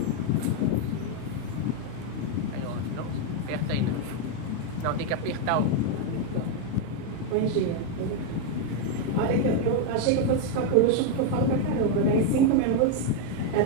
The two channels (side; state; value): both; different; correlation 0.01